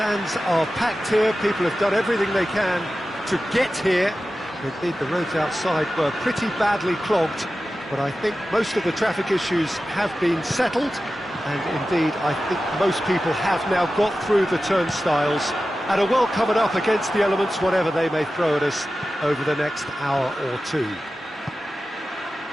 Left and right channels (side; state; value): both; normal; correlation 0.94